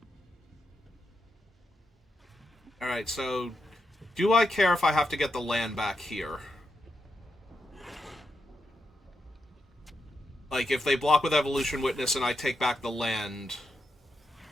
Alright, so... Do I care if I have to get the land back here? Like, if they block with Evolution Witness and I take back the land...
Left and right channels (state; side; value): normal; both; correlation 0.85